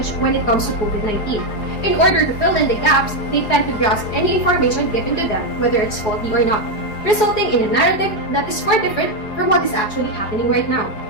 when it comes to COVID-19. In order to fill in the gaps, they tend to grasp any information given to them, whether it's faulty or not, resulting in a narrative that is far different from what is actually happening right now.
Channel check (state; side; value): late; right; 4.8 ms